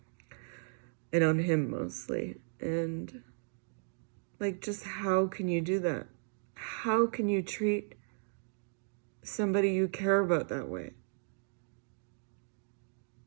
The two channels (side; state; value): left; silent; digital silence